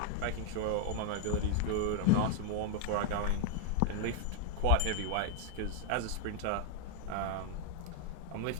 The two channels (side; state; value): both; different; correlation 0.00